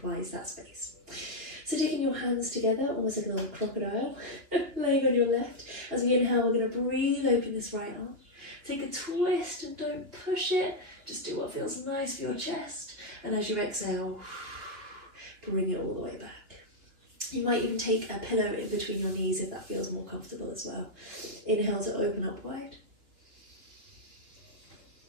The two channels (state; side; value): late; left; 2.9 ms